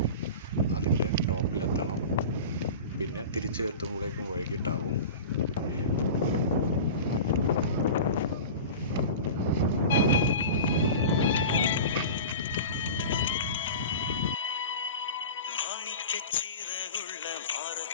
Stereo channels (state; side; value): inverted; both; correlation -0.32